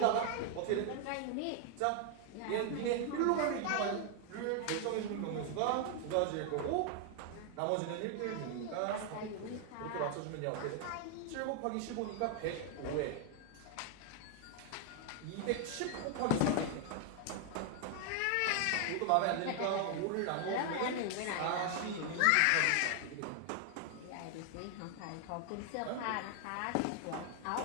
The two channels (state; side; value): different; both; correlation 0.00